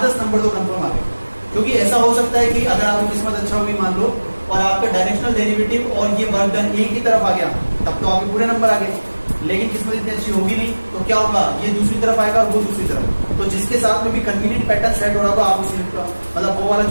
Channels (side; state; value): both; inverted; correlation -1.00